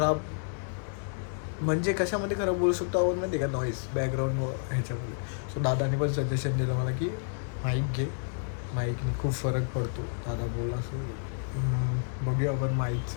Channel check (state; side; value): silent; right; digital silence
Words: म्हणजे कशामध्ये खराब बोलू शकतो आपण माहिती का, नॉईज बॅकग्राऊंड ह्याच्यामध्ये. सो दादाने पण सजेशन दिलं मला की माईक घे, माईकने खूप फरक पडतो दादा बोलला. सो बघूया आपण